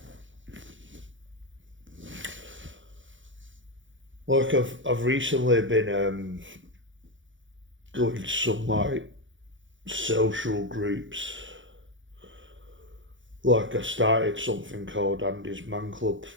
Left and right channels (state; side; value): late; left; 0.56 ms